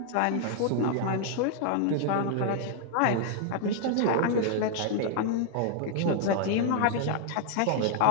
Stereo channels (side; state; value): both; different; correlation 0.00